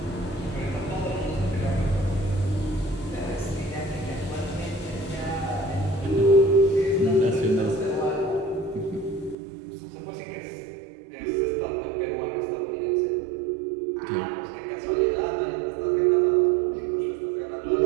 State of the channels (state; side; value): drops out; left; at 9.3 s